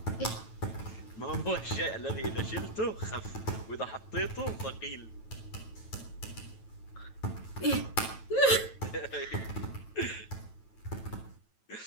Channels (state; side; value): late; right; 9.1 ms